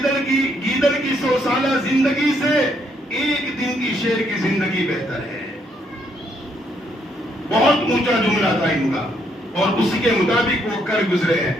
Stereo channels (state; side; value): normal; both; correlation 0.72